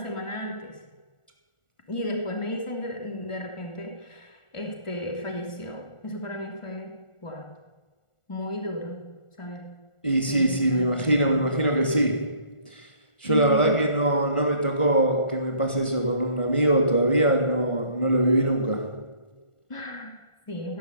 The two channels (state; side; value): late; right; 1.4 ms